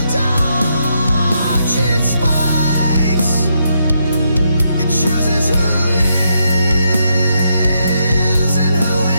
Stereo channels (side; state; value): both; inverted; correlation -0.79